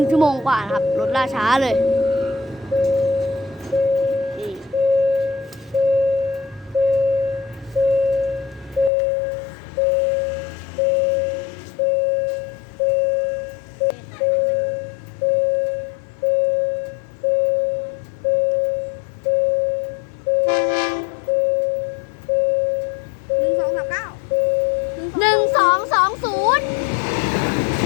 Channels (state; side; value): drops out; right; at 8.9 s